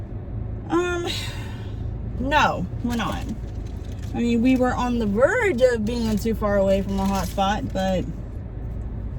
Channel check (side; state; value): both; identical; correlation 1.00